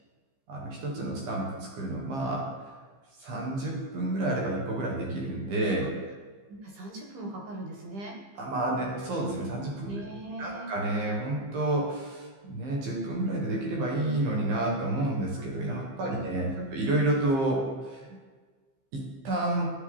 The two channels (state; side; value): late; left; 15 ms